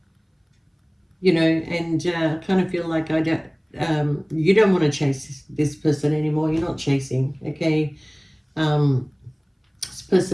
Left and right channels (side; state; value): both; identical; correlation 1.00